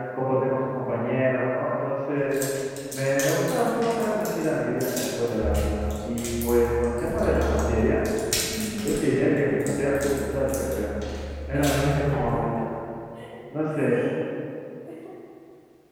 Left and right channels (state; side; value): identical; both; correlation 1.00